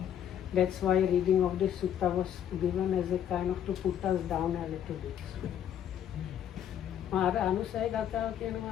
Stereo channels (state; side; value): quieter; right; 9.7 dB